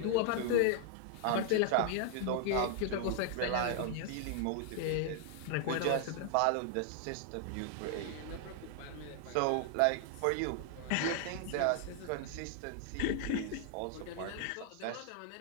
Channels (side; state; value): both; different; correlation 0.00